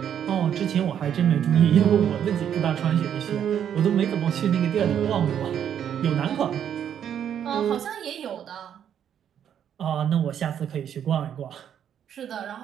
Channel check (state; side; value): quieter; left; 9.2 dB